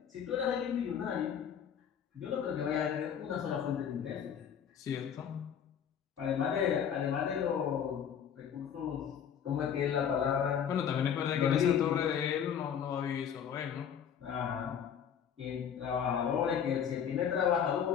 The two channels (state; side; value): quieter; right; 8.2 dB